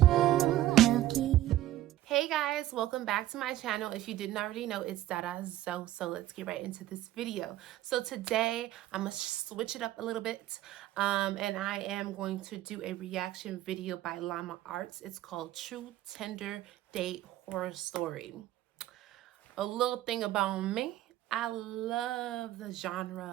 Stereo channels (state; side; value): quieter; left; 14.4 dB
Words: how can Hey guys, welcome back to my channel. If you didn't already know, it's Dada So. So let's get right into this video. So today I'm gonna switch it up a little bit, and I am going to do a reaction video by Llama Arts. It's called True Tinder Date Horror Story. A little thing about me, I love the